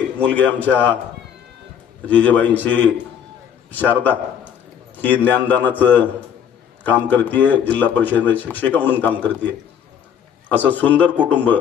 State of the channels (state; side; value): quieter; right; 8.5 dB